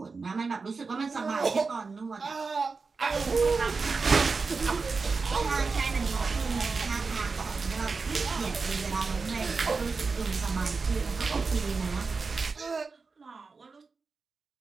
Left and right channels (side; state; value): left; quieter; 4.5 dB